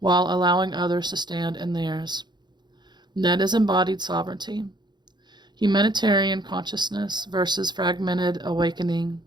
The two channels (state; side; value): late; left; 0.21 ms